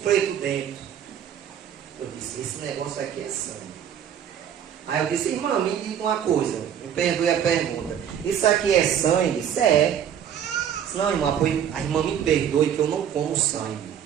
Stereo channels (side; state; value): left; quieter; 9.1 dB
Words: preto dentro. Eu disse, esse negócio aqui é sangue. Aí eu disse, irmã, me diga uma coisa, me perdoe a pergunta. Isso aqui é sangue? Isso é. Não, irmã, a irmã me perdoe que eu não como sangue.